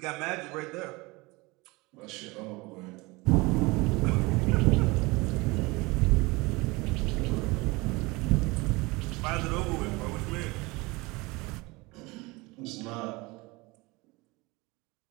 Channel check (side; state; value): left; quieter; 23.9 dB